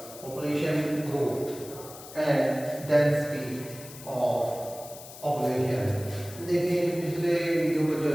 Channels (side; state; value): left; noise; hiss, 16 dB below the sound